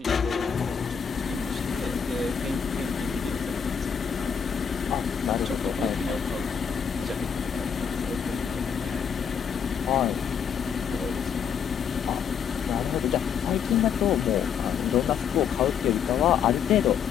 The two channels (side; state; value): right; quieter; 7.4 dB